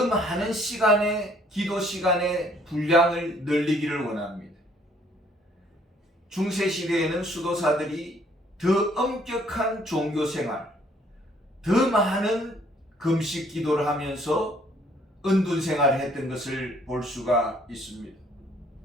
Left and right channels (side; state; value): both; normal; correlation 0.62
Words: 많은 기도 시간의 분량을 늘리기를 원합니다. 중세시대에는 수도사들이 더 엄격한 종교생활, 더 많은 금식 기도를 하면서 은둔 생활을 했던 것을 볼 수가 있습니다.